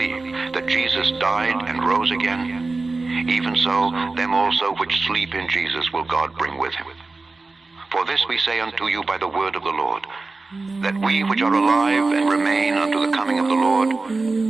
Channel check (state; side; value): quieter; left; 3.6 dB